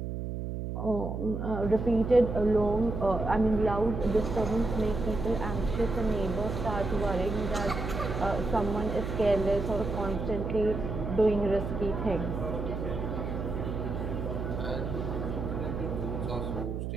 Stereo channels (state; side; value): noise; right; hum, 4 dB below the sound